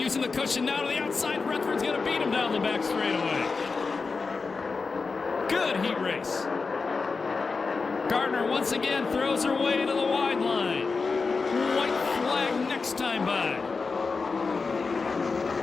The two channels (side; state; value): right; quieter; 4.5 dB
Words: the cushion now to the outside. Rutherford's going to beat him down the back straightaway. Good heat race. Gardner once again throws her way to the wide line. White flag next time by.